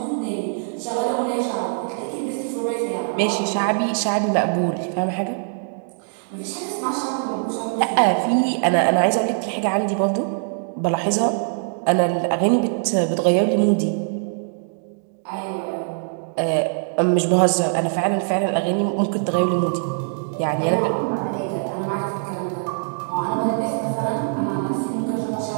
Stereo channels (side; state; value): left; silent; digital silence